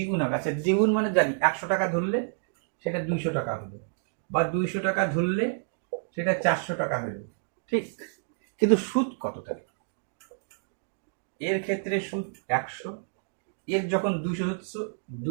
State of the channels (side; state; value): left; silent; digital silence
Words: হবে, আচ্ছা দ্বিগুণ মানে জানি 100 টাকা ধরলে সেটা 200 টাকা হলো, বা 200 টাকা ধরলে সেটা 400 টাকা হলো, ঠিক। কিন্তু সুদ কত থাকে, এর ক্ষেত্রে সুদ 100, এর যখন 200 হচ্ছে